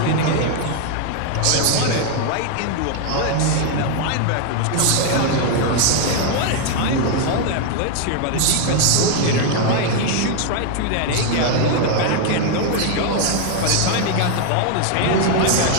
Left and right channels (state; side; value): different; both; correlation 0.00